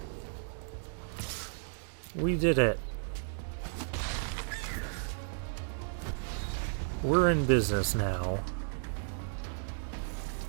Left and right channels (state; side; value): silent; left; digital silence